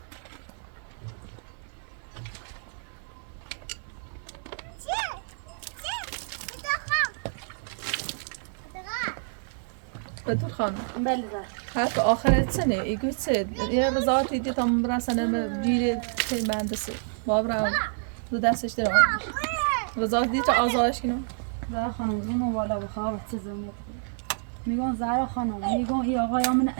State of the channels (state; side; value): silent; left; digital silence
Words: بدون خانم بله حرف آخرت سنه ایگو سه یه رضایت دیدی تا برسنم بیره که مهندسی بابرا دو دستش در رضایت دیدی تا آزارش کنم زهرا خانم اونو بالا بخواب چه زمینت میگم زهرا خانم میگم این آقای من